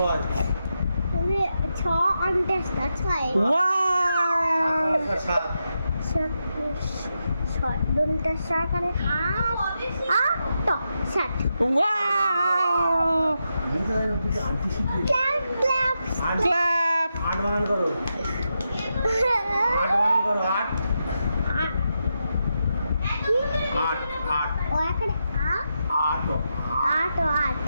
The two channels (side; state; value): both; inverted; correlation -0.86